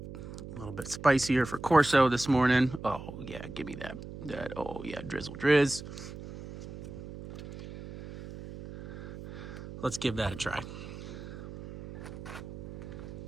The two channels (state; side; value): noise; right; hum, 12 dB below the sound